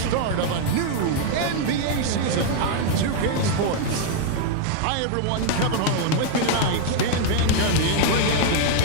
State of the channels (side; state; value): both; different; correlation 0.00